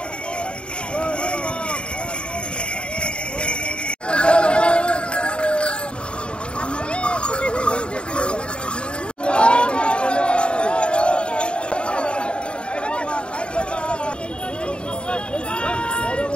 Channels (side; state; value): right; late; 0.054 ms